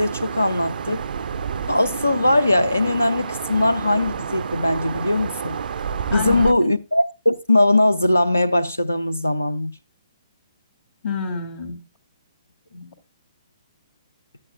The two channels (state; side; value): inverted; both; correlation -0.89